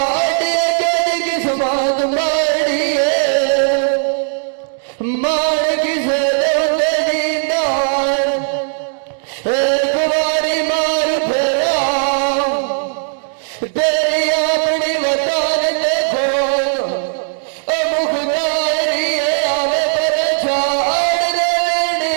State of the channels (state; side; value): silent; left; 68 dB below the other